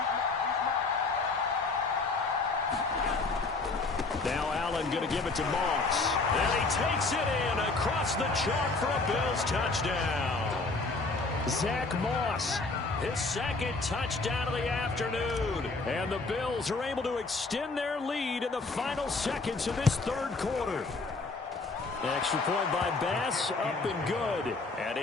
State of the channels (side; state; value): right; quieter; 3.7 dB